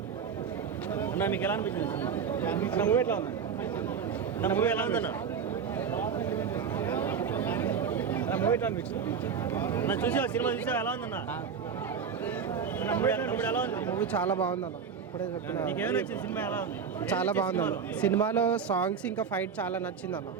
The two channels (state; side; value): quieter; left; 6.6 dB